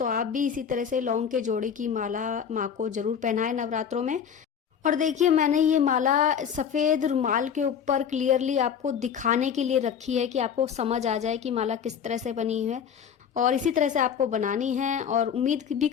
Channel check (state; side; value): quieter; right; 7.8 dB